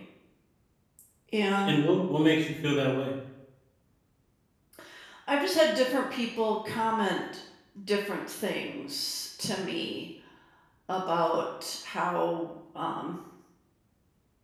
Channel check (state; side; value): identical; both; correlation 1.00